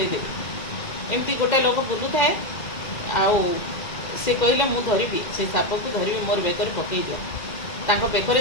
ଏମିତି ଗୋଟେ ଲୋକ ବୁଲୁଥାଏ, ଆଉ ସେ କହିଲେ ମୁଁ ଧରିବି, ସେ ସାପକୁ ଧରିବି, ମୋର ବେକରେ ପକାଇ ଦିଅ। ତାଙ୍କ ବେକରେ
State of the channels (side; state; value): right; late; 2.1 ms